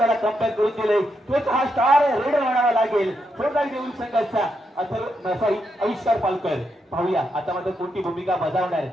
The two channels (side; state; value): both; normal; correlation 0.82